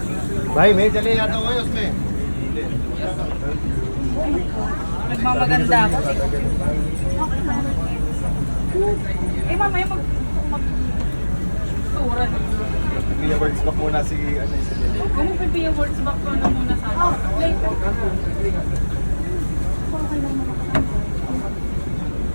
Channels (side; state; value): both; inverted; correlation -1.00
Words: Bye, me. Dali yato ayos, me. Nagmamaganda ako. Mamaya mag-tura na. Pia words back muna si ano si Lily. Kung magpipia words back ko na muna sa akin. Later.